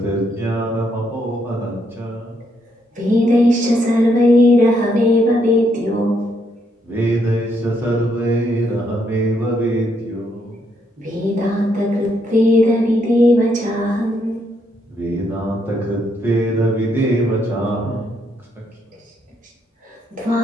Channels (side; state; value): both; normal; correlation 0.75